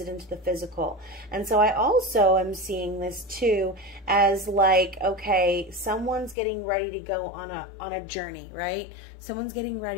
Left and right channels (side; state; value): right; drops out; at 6.4 s